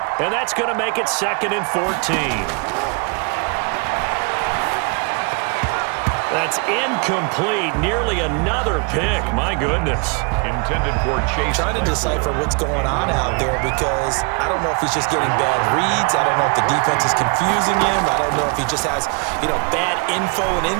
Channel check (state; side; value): quieter; left; 34.3 dB